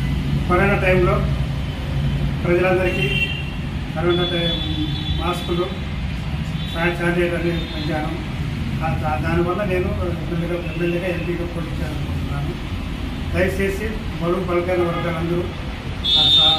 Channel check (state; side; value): identical; both; correlation 1.00